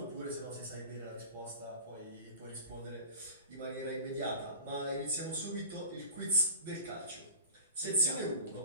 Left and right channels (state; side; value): inverted; both; correlation -0.38